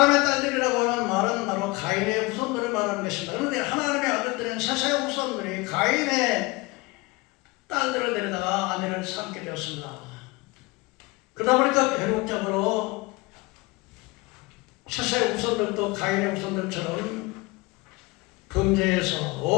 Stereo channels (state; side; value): quieter; right; 23.7 dB